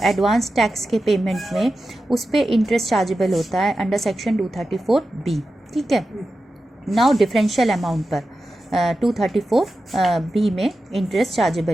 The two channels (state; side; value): normal; both; correlation 0.92